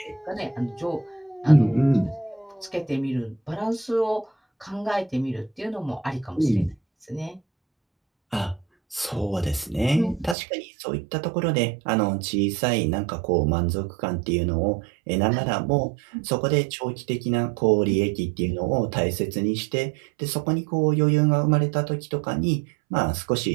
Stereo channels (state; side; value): drops out; left; at 10.4 s